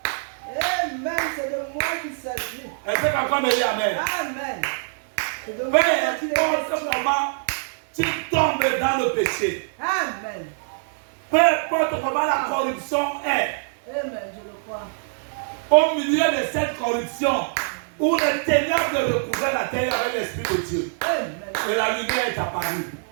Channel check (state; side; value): silent; left; 59 dB below the other